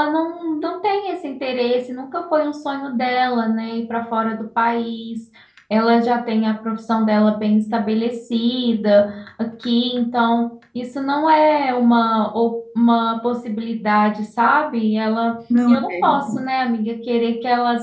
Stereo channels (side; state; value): both; identical; correlation 1.00